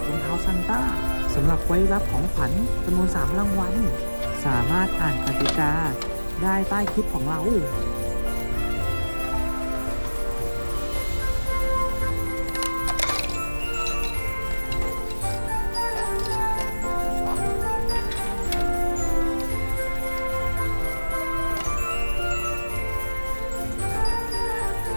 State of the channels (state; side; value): inverted; both; correlation -1.00